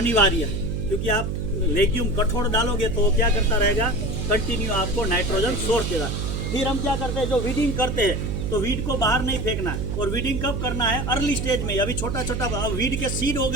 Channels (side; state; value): right; noise; hum, 2 dB below the sound